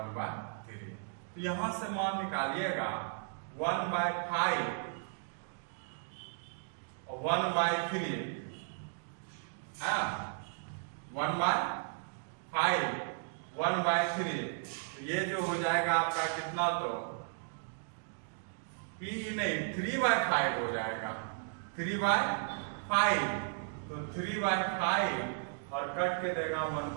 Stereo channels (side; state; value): left; silent; digital silence